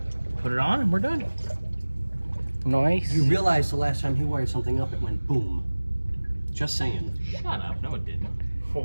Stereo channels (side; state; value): both; inverted; correlation -1.00